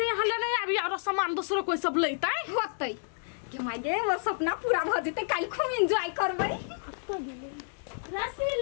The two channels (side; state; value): right; silent; digital silence